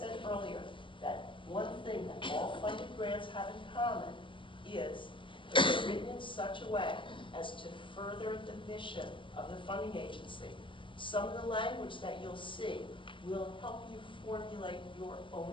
earlier, that one thing that all funded grants have in common is that they're written in such a way as to further the mission of the funding agency. Some of the language that you'll see will help you formulate your own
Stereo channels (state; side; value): late; right; 0.24 ms